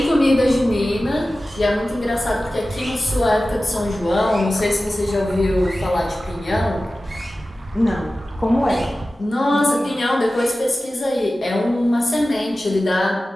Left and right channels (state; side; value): normal; both; correlation 0.95